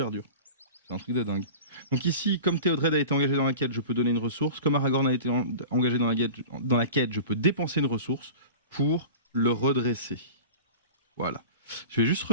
dur. C'est un truc de dingue. Donc ici, comme Théodred a été engagé dans la quête, je peux donner une ressource. Comme Aragorn a été engagé dans la quête, je peux dépenser une ressource pour le redresser. Voilà. Je vais juste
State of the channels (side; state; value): both; inverted; correlation -0.36